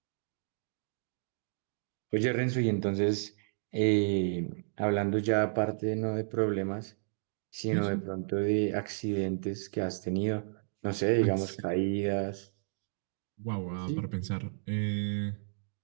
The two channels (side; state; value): left; silent; digital silence